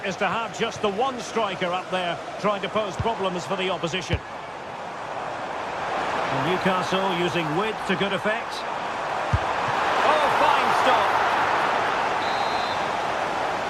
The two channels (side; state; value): both; identical; correlation 1.00